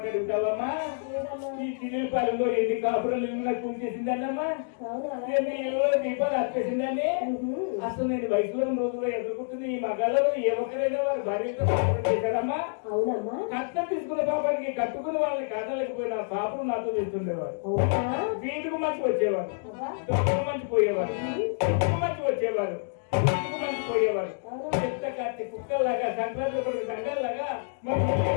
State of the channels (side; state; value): right; silent; digital silence